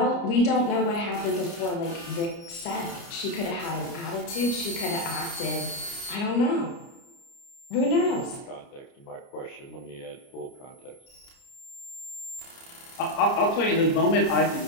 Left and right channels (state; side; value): late; right; 29 ms